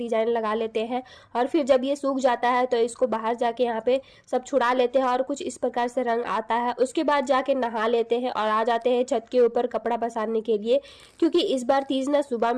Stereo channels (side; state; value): both; identical; correlation 1.00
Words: लगा लेते हैं। और फिर जब ये सूख जाता है तो इसको बाहर जाके यहाँ पे सब छुड़ा लेते हैं और कुछ इस प्रकार से रंग आता है। उसके बाद जाके नहा लेते हैं और आ जाते हैं छत के ऊपर कपड़ा पसारने के लिए, क्योंकि इस बार तीज ना सुबह